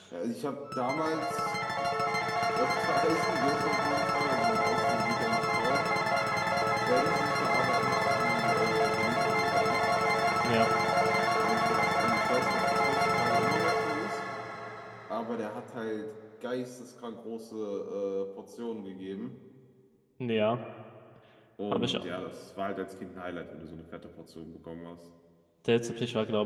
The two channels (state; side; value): identical; both; correlation 1.00